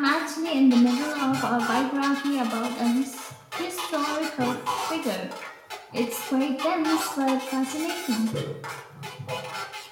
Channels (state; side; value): identical; both; correlation 1.00